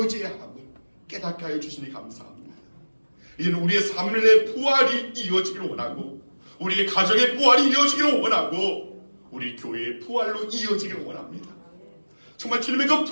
함을 깨닫게 하여 주시니 감사합니다. 이제는 우리의 삶의 부활이 이어지기를 원하고 우리의 가정의 부활이 이어지기를 원하고 우리 교회의 부활로 이어지기를 원합니다. 정말 주님의 그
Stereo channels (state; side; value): inverted; both; correlation -1.00